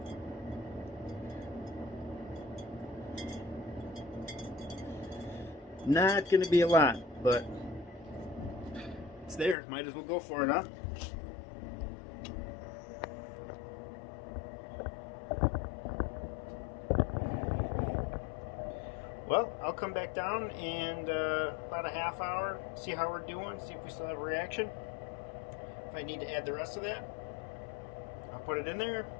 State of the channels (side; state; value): right; drops out; at 9.6 s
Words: Not going to be a lot, but it's there. Might as well go for it, huh? Well, I'll come back down in about a half hour, see how we're doing, see if we still have a reaction. If I need to add the rest of that, I'll put it in there.